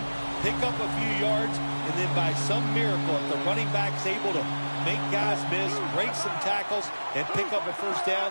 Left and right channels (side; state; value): both; inverted; correlation -1.00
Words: pick up a few yards, and then by some miracle, if the running back's able to make guys miss, break some tackles, and pick up a 1st